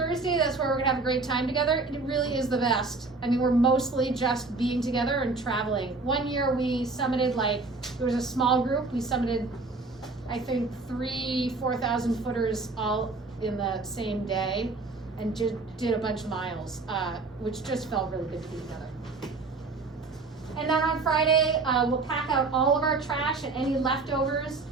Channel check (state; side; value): quieter; left; 3.7 dB